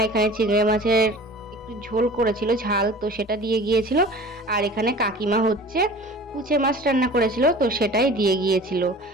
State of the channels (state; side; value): normal; both; correlation 0.42